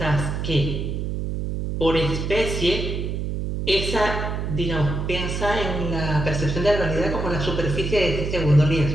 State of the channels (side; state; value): right; noise; hum, 2 dB below the sound